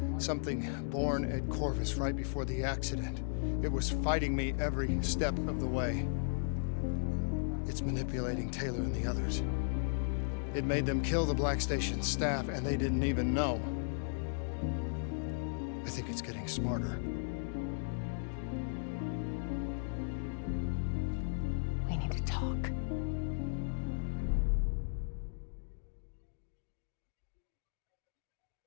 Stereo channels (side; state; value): right; silent; digital silence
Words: Something born at Corvus right before the accident. It was fighting me every step of the way. It's manipulating Taylor and the others. It made them kill the Black Station staff, and they didn't even know. I think it's getting smarter.